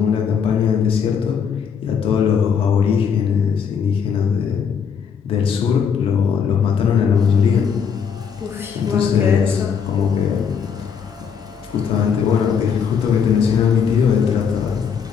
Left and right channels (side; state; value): right; quieter; 6.9 dB